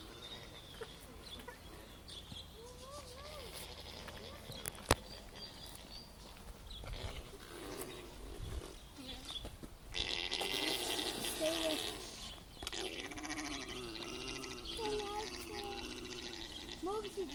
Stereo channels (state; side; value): identical; both; correlation 1.00